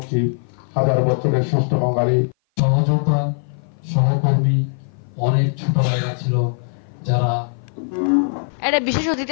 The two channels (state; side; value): silent; right; 55 dB below the other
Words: হাজার বছরের শ্রেষ্ঠ বাঙালি সহযোদ্ধা সহকর্মী অনেক ছোট ভাইরা ছিল যারা। এর বিশেষ অতিথি